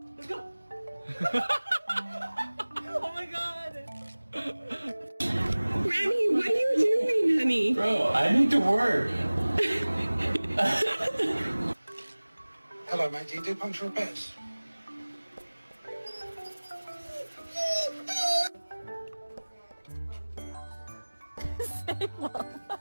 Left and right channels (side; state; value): both; inverted; correlation -1.00